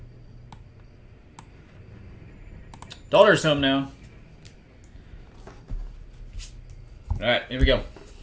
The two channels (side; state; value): both; identical; correlation 1.00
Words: Daughter's home now. All right, here we go.